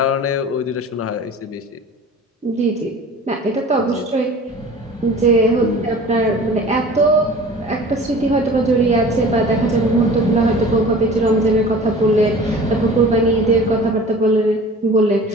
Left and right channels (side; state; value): both; normal; correlation 0.42